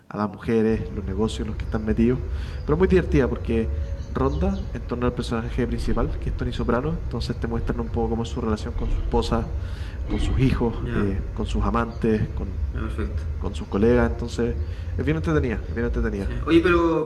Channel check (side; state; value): both; identical; correlation 1.00